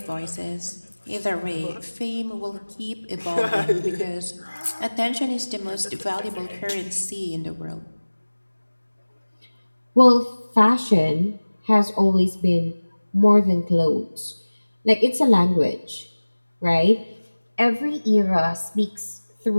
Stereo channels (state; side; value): inverted; both; correlation -1.00